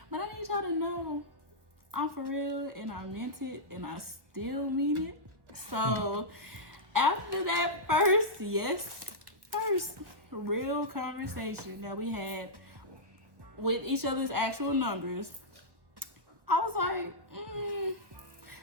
but I need y'all to know I'm for real, and I meant it, and I still mean it. So after that first real conversation that we had with each other's actual numbers, I was like,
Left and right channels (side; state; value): left; late; 1.3 ms